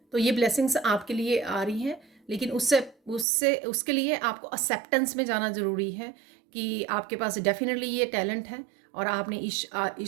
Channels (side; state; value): left; drops out; at 3.2 s